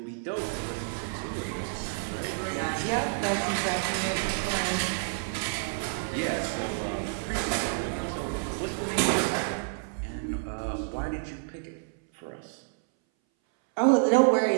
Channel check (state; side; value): silent; left; 58 dB below the other